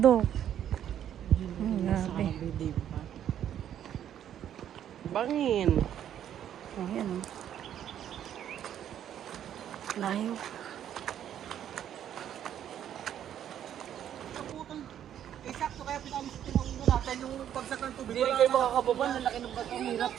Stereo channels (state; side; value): quieter; left; 10.2 dB